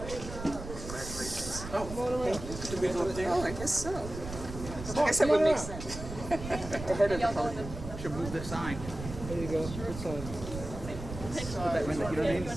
Oh, I guess so. I guess that would make sense. Ahead of the podium. Should move the sign. There you go. Good sign. You know what I mean?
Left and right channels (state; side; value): noise; right; rumble, 9 dB below the sound